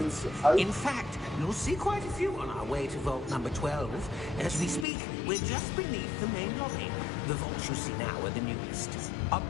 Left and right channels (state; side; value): drops out; right; at 4.9 s